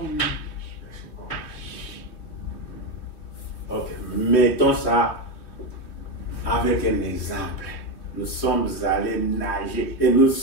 Ok, mettons ça avec un exemple. Nous sommes allés nager et nous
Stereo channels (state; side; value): late; right; 3.3 ms